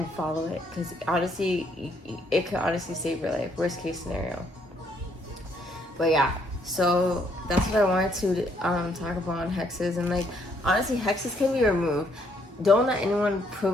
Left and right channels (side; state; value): both; normal; correlation 0.69